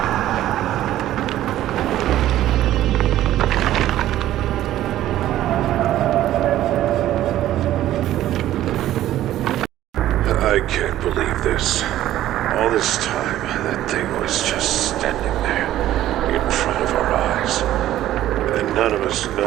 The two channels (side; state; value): left; quieter; 13.4 dB